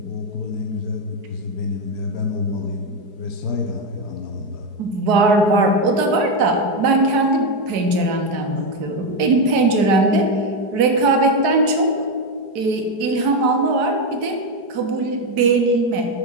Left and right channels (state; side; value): late; left; 4.8 ms